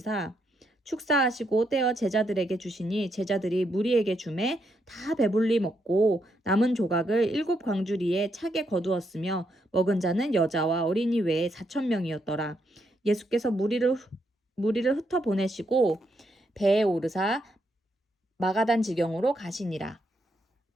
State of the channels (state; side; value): normal; both; correlation 0.78